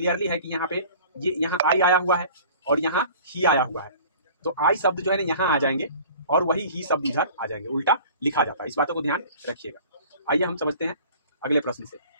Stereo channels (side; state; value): both; inverted; correlation -0.46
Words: है कि यहाँ पे ये यहाँ आई आया हुआ है और यहाँ ही आया हुआ है, तो आई शब्द जो है ना यहाँ आ जाएंगे और वही ही शब्द इधर आ जाएंगे, उल्टा लिखा जाता है। इस बातों को ध्यान रखिएगा। आइए हम समझते हैं अगले प्रश्न से।